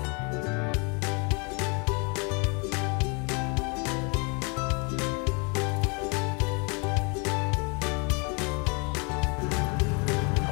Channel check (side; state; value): right; quieter; 32.2 dB